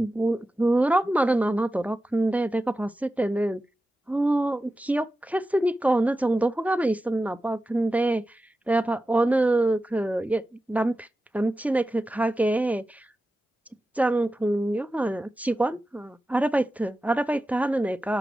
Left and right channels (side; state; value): both; normal; correlation 0.93